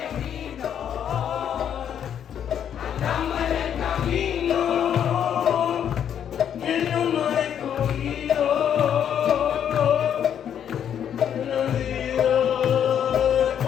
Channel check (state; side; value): quieter; right; 9.1 dB